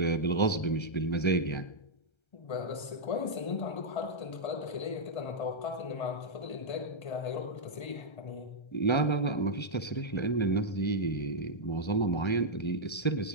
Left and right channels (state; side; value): late; right; 1.3 ms